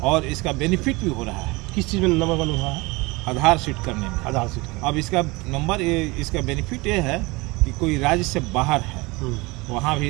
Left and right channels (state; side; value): quieter; left; 24.1 dB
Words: और इसका बेनिफिट भी हो रहा है। किस चीज़ में नंबर 1 हुआ है? आधार शीट करने में। आधार शीट। अब इसका नंबर इसका बेनिफिट ये है कि कोई राज्य से बाहर है, वहाँ भी